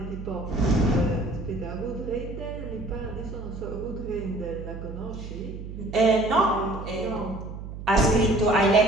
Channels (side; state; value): right; noise; hum, 10 dB below the sound